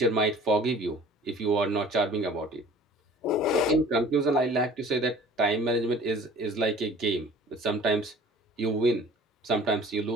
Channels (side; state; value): both; normal; correlation 0.47